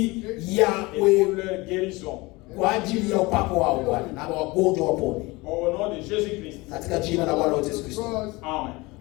ya et pour leur guérison. kwa ajili ya upako wao Bwana, na wagonjwa wapone Au nom de Jésus-Christ. katika jina la Bwana wetu Yesu Kristo. Amen.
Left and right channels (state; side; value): quieter; right; 23.1 dB